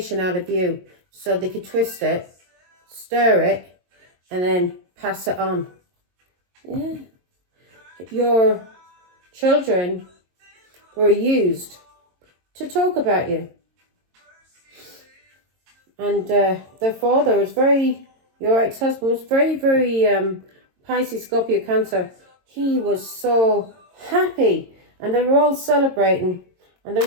out of you. So they could twist it, stir it, and then pass it on. Yeah. Your children were used to talk about you. And their father was your ex-husband was very, Pisces, Scorpio, Cancer. He was so happy. And they were all celebrating. And they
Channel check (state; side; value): late; left; 22 ms